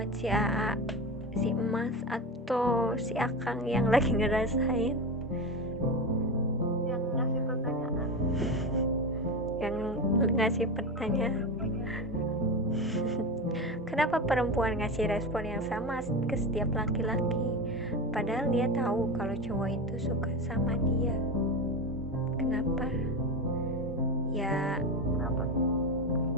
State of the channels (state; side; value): normal; both; correlation 0.21